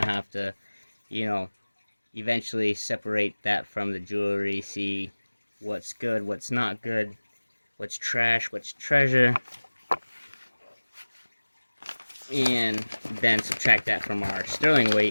have to, eventually separate that from the jewelry, see what's good, what's not good, what's trash, what's treasure, and then subtract that from our sterling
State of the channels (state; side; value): inverted; both; correlation -1.00